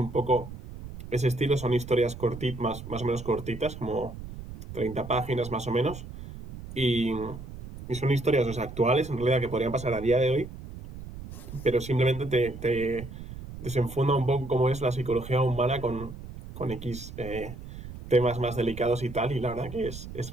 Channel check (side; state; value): right; noise; rumble, 12 dB below the sound